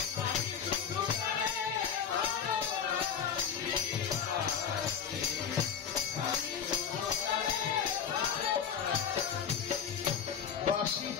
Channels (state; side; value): quieter; right; 7.7 dB